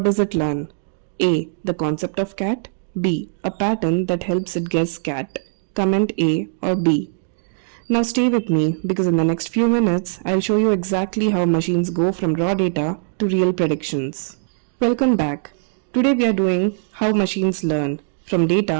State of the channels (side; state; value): left; silent; digital silence